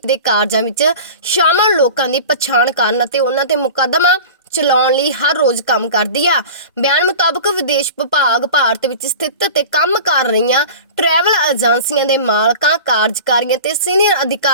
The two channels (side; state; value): both; inverted; correlation -0.36